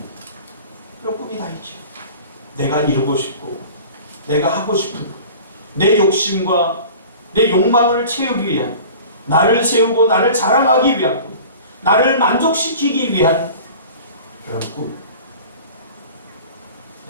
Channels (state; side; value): inverted; both; correlation -0.40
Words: 이런 꿈이 다 있죠. 내가 이루고 싶고 내가 하고 싶은 것, 내 욕심과 내 욕망을 채우기 위한, 나를 세우고 나를 자랑하기 위한 꿈, 나를 만족시키기 위한 그런 꿈,